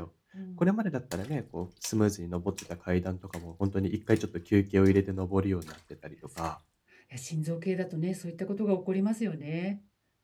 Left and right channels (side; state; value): both; identical; correlation 1.00